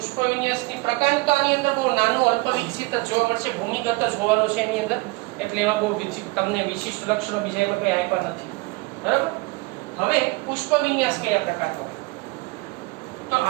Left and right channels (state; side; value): quieter; left; 24.6 dB